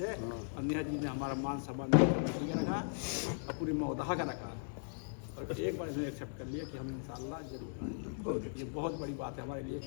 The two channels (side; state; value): right; silent; 52 dB below the other